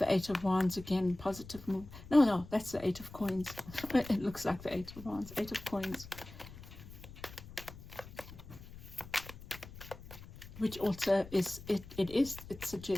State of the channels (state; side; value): noise; left; rumble, 16 dB below the sound